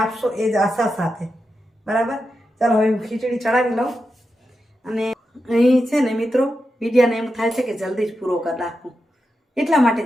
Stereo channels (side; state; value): both; normal; correlation 0.88